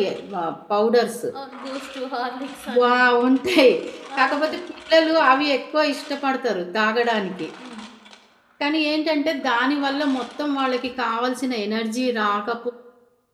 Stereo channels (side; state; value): both; identical; correlation 1.00